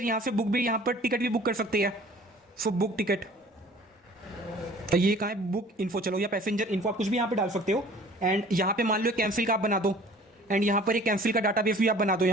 यहाँ से बुक भी, यहाँ पर टिकट भी बुक कर सकते हैं। सो बुक टिकट, तो ये कहाँ है, बुक इन्फो, चलो या पैसेंजर इन्फो, आप कुछ भी यहाँ पे डाल सकते हो। एंड यहाँ पे मान लो कैंसिल का आप बना दो, एंड यहाँ पर एक कैंसिल का डाटाबेस भी आप बना दो।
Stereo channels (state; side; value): normal; both; correlation 0.49